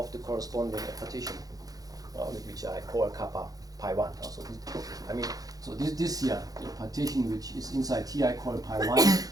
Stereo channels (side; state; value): left; late; 0.18 ms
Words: the corresponding partition, which I call kappa pi 1. So this here, the partition which is inside here I call pi 1,